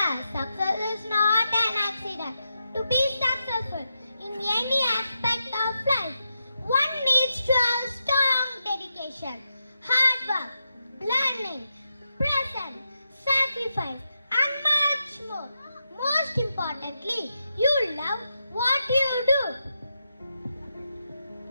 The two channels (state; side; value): inverted; both; correlation -0.86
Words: success is not an accident. To be successful in any aspect of life, one needs to have strong dedication, hard work, learning, presence, sacrifice, and much more. Most importantly, you love what you do.